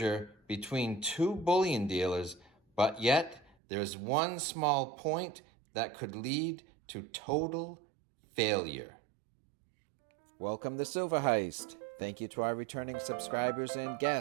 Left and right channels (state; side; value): drops out; left; at 3.6 s